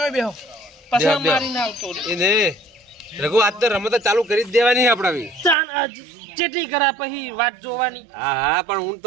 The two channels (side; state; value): left; drops out; at 5.6 s